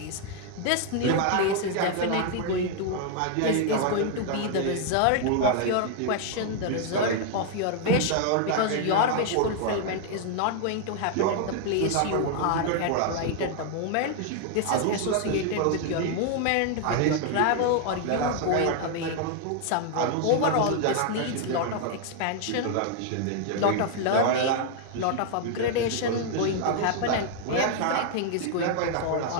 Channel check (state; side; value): different; both; correlation 0.00